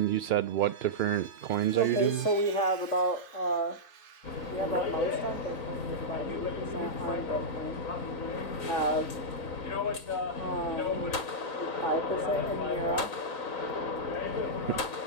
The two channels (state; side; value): late; right; 4.0 ms